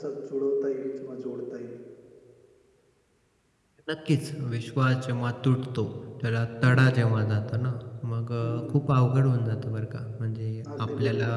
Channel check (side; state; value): both; identical; correlation 1.00